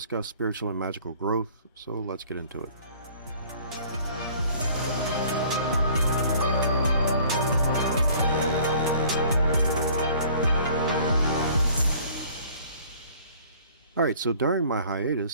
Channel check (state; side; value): inverted; both; correlation -0.53